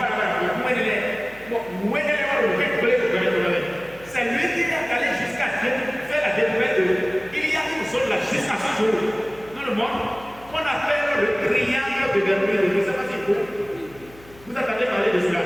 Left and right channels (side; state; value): left; noise; hum, 23 dB below the sound